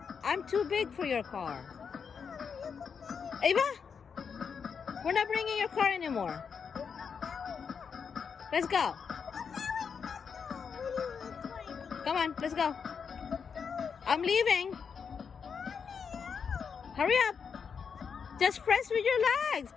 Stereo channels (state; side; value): quieter; right; 6.3 dB